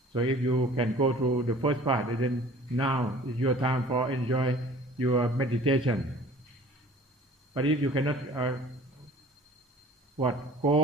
So if you can go through the first part, then now is your time for enjoy your meditation. But if you cannot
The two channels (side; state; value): both; normal; correlation 0.47